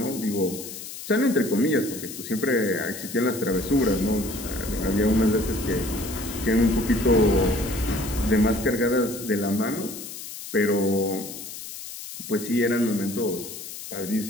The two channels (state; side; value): noise; left; hiss, 11 dB below the sound